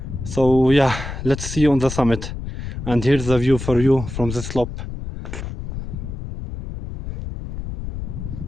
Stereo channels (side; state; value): left; noise; rumble, 8 dB below the sound